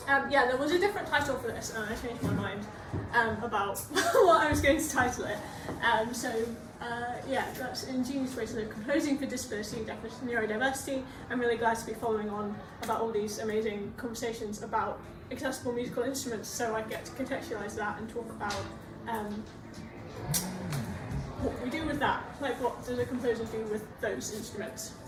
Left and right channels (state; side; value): identical; both; correlation 1.00